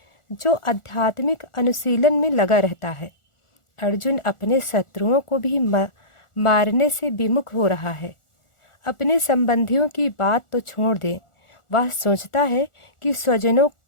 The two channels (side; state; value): right; late; 1.4 ms